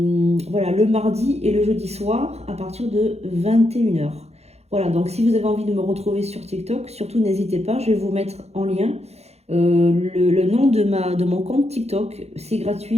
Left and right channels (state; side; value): late; left; 0.31 ms